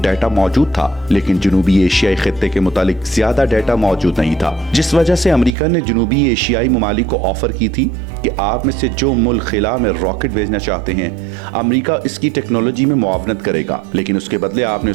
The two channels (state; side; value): drops out; left; at 5.5 s